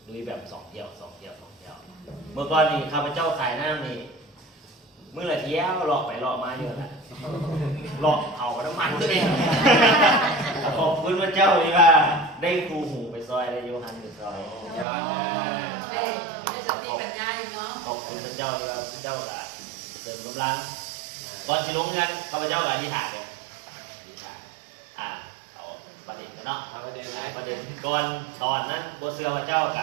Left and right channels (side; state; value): left; drops out; at 14.9 s